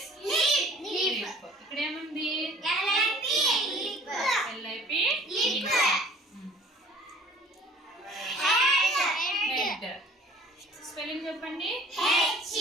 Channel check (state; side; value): normal; both; correlation 0.50